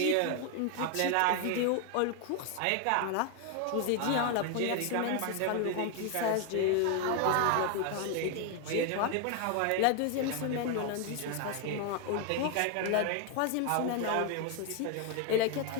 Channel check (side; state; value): both; different; correlation 0.01